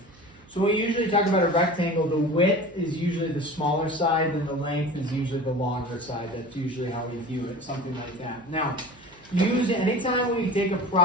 So we usually talk about a rectangle, the width is usually the smaller side, and the length is usually the longer side. That's usually how we view it, something like that. Now, anytime we take a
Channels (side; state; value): right; noise; hum, 27 dB below the sound